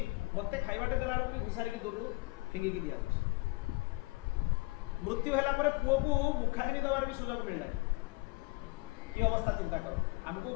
मत खाइबाटे देला भी घुसारी दूर फिंगिकी दिया मृत्यु है पुओ को मुखाग्नि देवार भी सुजोग मिलला ये अवस्था चिंता कर आमको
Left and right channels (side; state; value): right; quieter; 25.3 dB